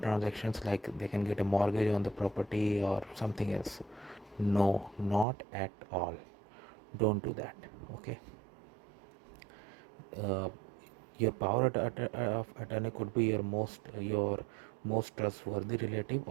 like they can get a mortgage on the property or something else. No, not at all. Don't do that. Okay. uh, your power of attorney could be your most trustworthy relative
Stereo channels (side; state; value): left; drops out; at 5.2 s